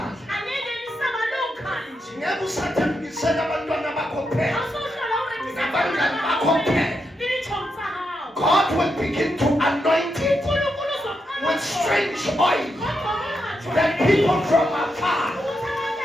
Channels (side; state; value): both; normal; correlation 0.84